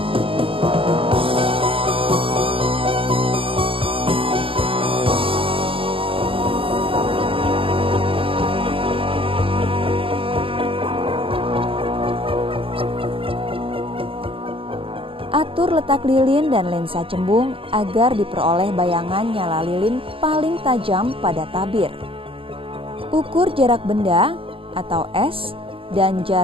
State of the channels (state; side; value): late; left; 0.26 ms